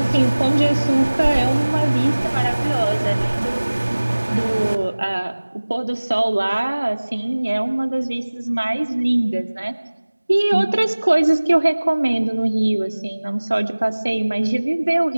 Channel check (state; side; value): inverted; both; correlation -1.00